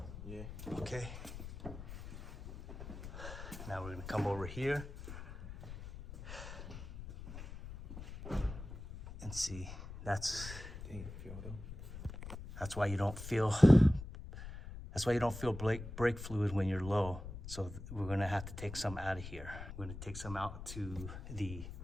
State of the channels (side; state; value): left; noise; rumble, 11 dB below the sound